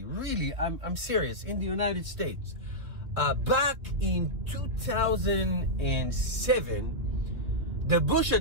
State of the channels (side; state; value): left; late; 2.6 ms